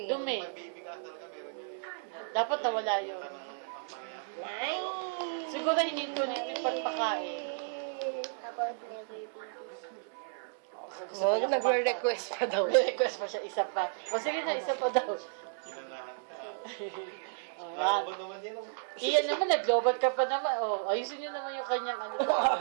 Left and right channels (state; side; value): silent; left; digital silence